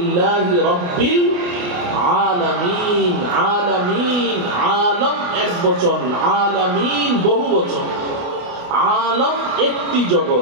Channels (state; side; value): late; left; 28 ms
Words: রব্বিল আলামিন। আলামিন, আলম এক বচন, আলামিন বহু বচন। আলম একটি